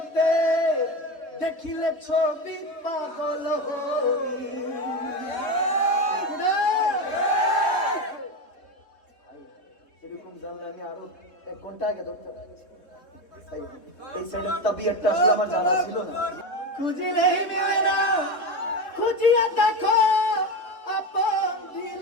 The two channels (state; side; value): late; right; 3.7 ms